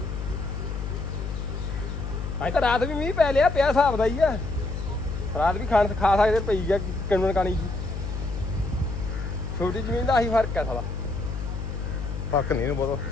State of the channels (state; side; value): noise; left; hum, 5 dB below the sound